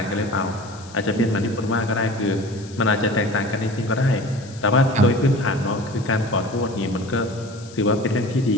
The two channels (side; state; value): left; noise; hiss, 21 dB below the sound